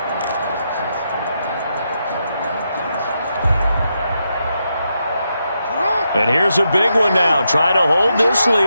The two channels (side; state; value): both; inverted; correlation -0.83